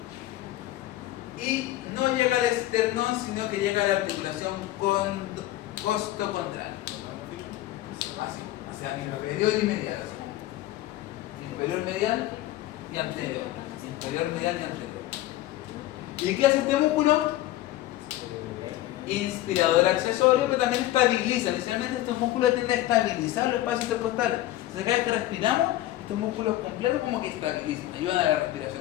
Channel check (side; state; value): right; quieter; 15.2 dB